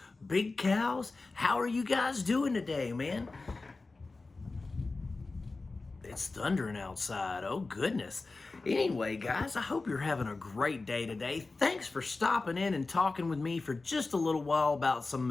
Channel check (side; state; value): right; quieter; 3.6 dB